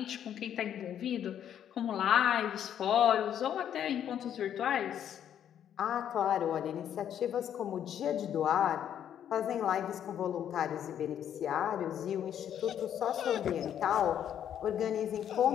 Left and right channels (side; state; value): right; quieter; 9.8 dB